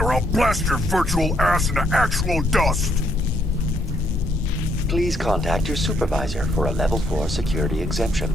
or I'll blast your virtual ass into actual dust! Please contact your supervisor for a level 4 security exemption,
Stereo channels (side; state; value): both; normal; correlation 0.72